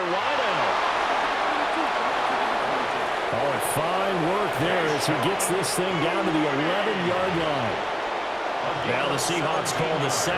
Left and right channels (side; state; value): both; identical; correlation 1.00